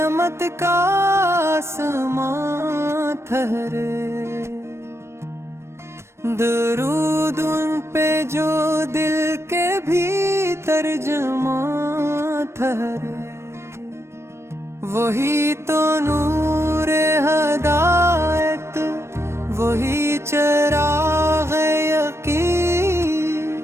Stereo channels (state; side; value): late; left; 0.13 ms